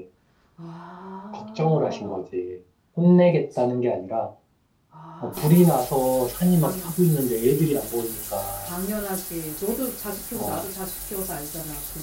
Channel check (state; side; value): identical; both; correlation 1.00